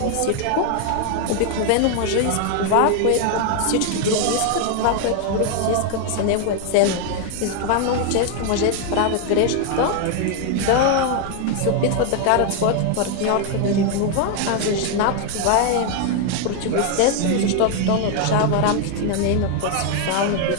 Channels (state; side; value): different; both; correlation 0.00